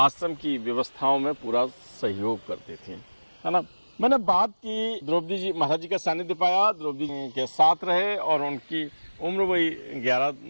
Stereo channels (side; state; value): both; inverted; correlation -1.00